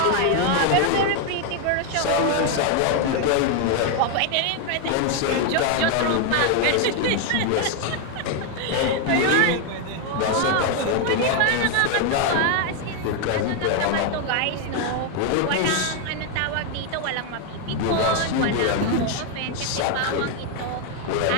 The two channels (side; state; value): both; different; correlation 0.01